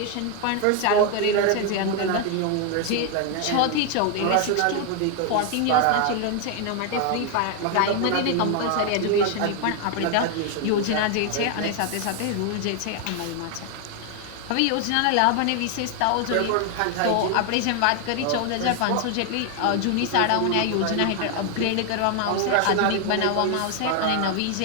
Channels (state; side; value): different; both; correlation 0.01